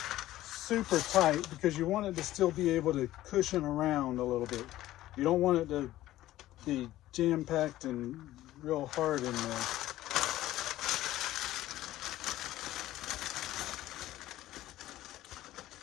super tight because you want it to still be able to cushion around a little bit. You don't want it to be jam-packed and real hard in there.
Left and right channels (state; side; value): quieter; right; 14.9 dB